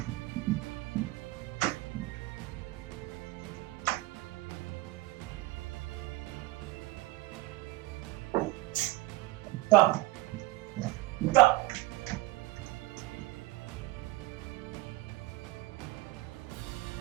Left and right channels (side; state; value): left; quieter; 19.5 dB